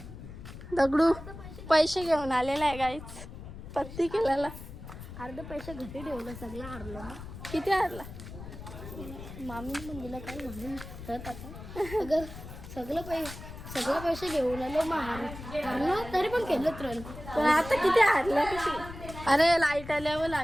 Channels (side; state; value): left; noise; rumble, 12 dB below the sound